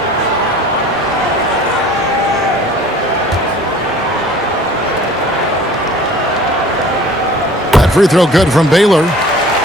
That free throw good from Baylor.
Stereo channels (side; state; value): both; normal; correlation 0.47